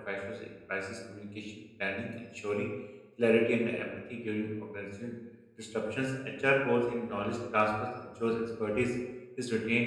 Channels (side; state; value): both; identical; correlation 1.00